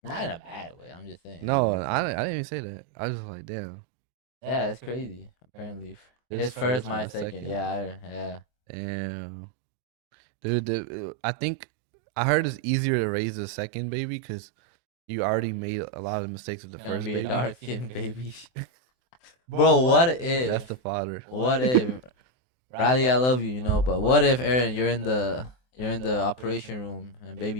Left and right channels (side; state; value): right; late; 24 ms